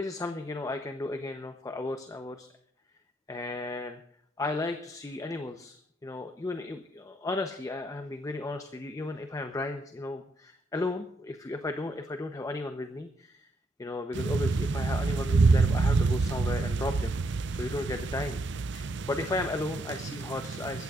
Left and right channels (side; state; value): both; normal; correlation 0.76